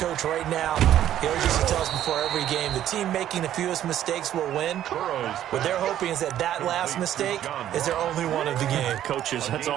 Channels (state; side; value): quieter; left; 11.6 dB